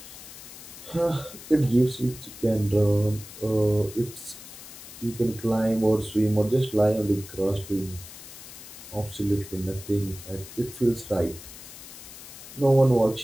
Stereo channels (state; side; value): noise; left; hiss, 15 dB below the sound